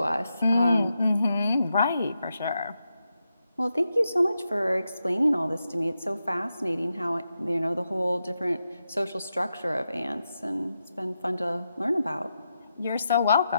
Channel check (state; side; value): inverted; both; correlation -0.87